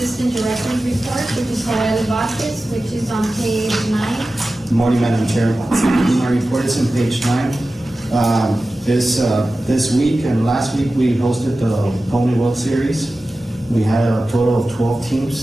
Director's report, which is Joel Vasquez, which is on page 9. Morning, Madam Chair. My report is on page 9. This week and last week, we hosted the Pony World Series. We had a total of 12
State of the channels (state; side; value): normal; both; correlation 0.95